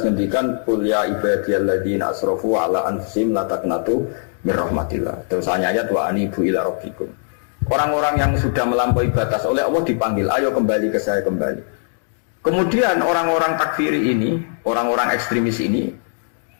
ngendikan qul ya ibadiyalladzina asrafu ala anfusihim la taqnatu mir rahmatillah. Terus ayat wa anibu ila rabbikum. Orang-orang yang sudah melampaui batas oleh Allah dipanggil, ayo kembali ke saya kembali. Kemudian orang-orang takfiri ini, orang-orang ekstremis ini,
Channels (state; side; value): silent; right; digital silence